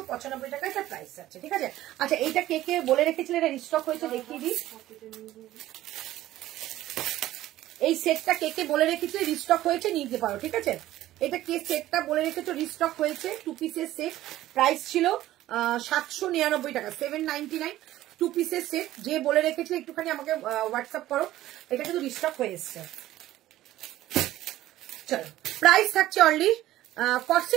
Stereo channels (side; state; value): left; quieter; 14.7 dB